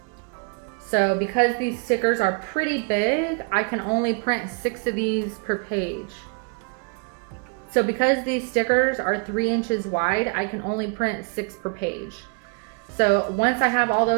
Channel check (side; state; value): left; quieter; 35.9 dB